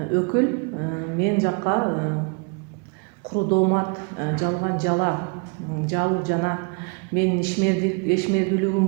мен жакка куру доомат, жалган жала жабуу жана менин ишмердүүлүгүм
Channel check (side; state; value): left; quieter; 33.4 dB